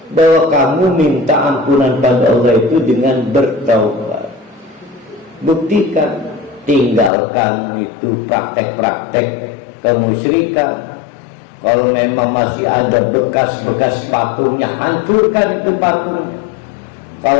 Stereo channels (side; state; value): right; drops out; at 7.1 s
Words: bahwa kamu minta ampunan pada Allah itu dengan bertaubat. Buktikan. Tinggalkan itu praktek-praktek kemusyrikan. Kalau memang masih ada bekas-bekas patungnya, hancurkan itu patungnya.